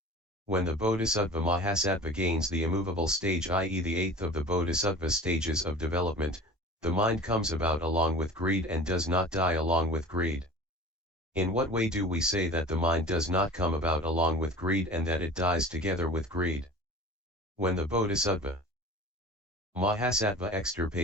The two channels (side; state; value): both; normal; correlation 0.39